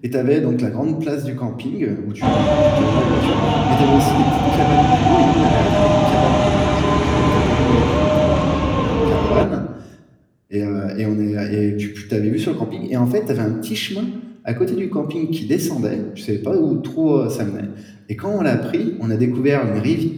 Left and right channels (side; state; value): both; identical; correlation 1.00